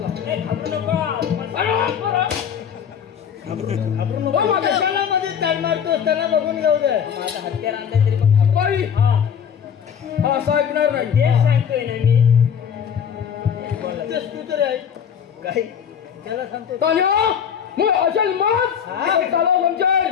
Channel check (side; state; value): right; quieter; 7.9 dB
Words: त्यांना बघून जाऊ दे. माझा हत्यार आणलाय तरी पण असं ऐकणार नाही. तेच सांगतोय ना मी. तू तरी आहे काय त्याला सांगतो. असेल मग चालव